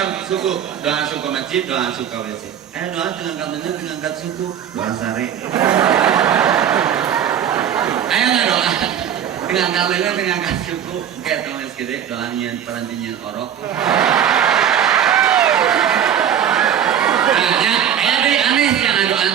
suku. Doa suku masjid, doa suku WC. Aya doa teu ngangkat leungeun, teu ngangkat suku. Doa sare. Ayo nggak doa dengan kalian dengan suku kayak teman gede doanya perantinyan orok. Nah, ayo deh aneh yang doa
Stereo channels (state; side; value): quieter; left; 9.2 dB